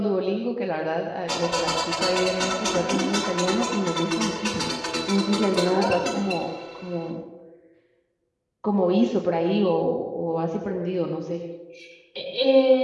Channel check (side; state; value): both; identical; correlation 1.00